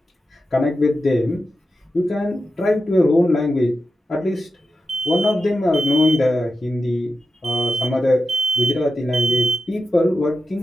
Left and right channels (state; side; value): normal; both; correlation 0.90